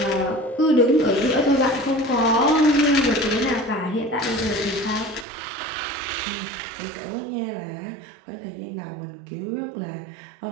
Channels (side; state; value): left; drops out; at 5.2 s